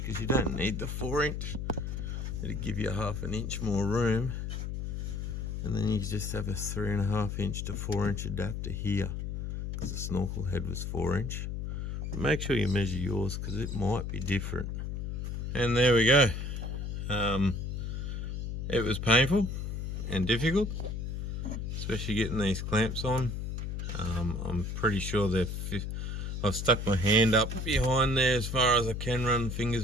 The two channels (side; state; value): left; noise; hum, 4 dB below the sound